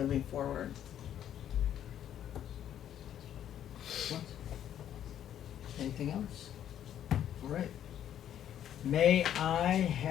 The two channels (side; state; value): right; quieter; 10.5 dB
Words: forward. Anything else? All right. May I